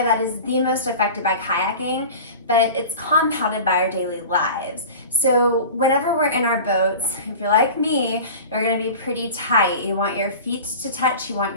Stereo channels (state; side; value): inverted; both; correlation -0.36